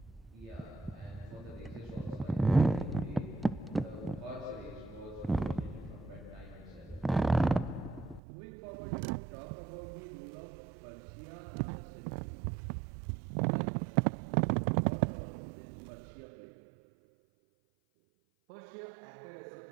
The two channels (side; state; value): left; drops out; at 8.2 s